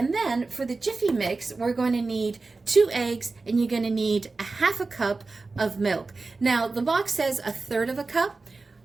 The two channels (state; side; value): quieter; left; 3.8 dB